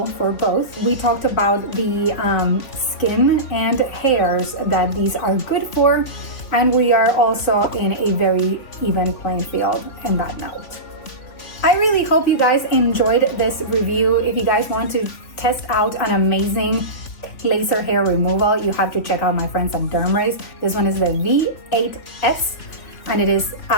for both. We talked about the skin and hairs that these are good for, and we are also in a very even playing field in that note. I really hope you guys enjoyed this review. If you guys want to test out an amazing laser hair removal, you have to check out my friends at DermRays. This one is the V8S, and it is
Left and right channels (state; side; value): late; right; 3.2 ms